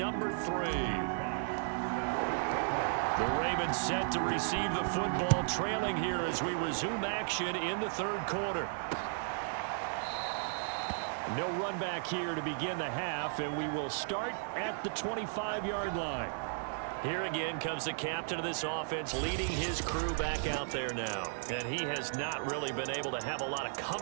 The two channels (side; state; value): left; silent; 55 dB below the other